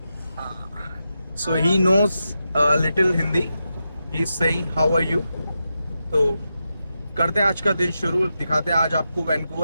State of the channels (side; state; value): both; inverted; correlation -0.88